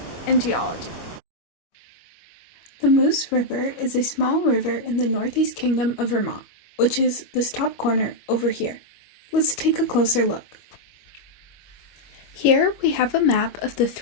and geology. The Moose River is a small river in the Northeast Kingdom of Vermont, which is this top corner over here. Let's take a closer look. Here we have a map of the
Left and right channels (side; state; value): right; late; 25 ms